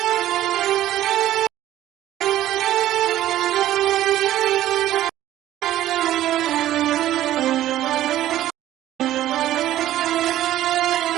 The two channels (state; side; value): quieter; left; 13.5 dB